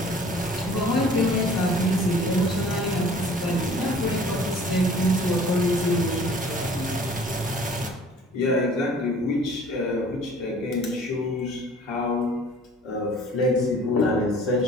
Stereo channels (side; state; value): both; normal; correlation 0.50